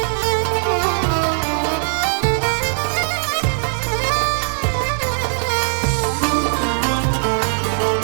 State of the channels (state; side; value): silent; left; 66 dB below the other